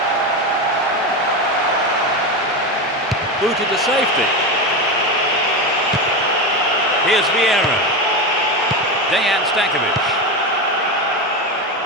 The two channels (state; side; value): normal; both; correlation 0.18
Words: Booted to safety. Here's Vieira. Dejan Stankovic.